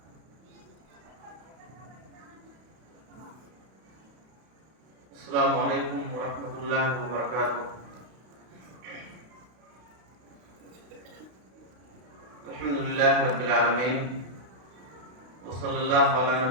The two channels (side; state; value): left; late; 32 ms